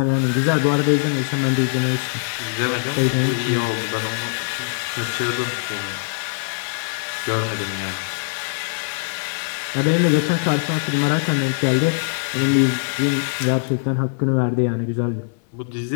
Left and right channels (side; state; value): right; silent; digital silence